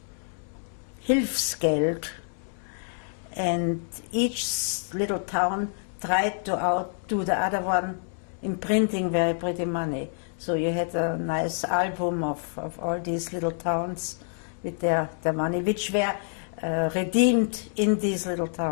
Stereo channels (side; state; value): right; silent; 60 dB below the other